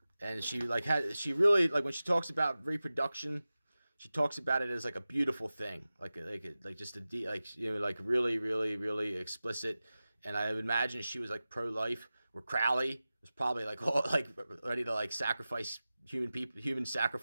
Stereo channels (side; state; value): both; inverted; correlation -0.96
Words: And she really when she talks about reproduction, she talks about it as like a beautiful thing, like just really, really, really explicit. And I would imagine she was like pro-life, where Crowley was probably like ready to like sacrifice human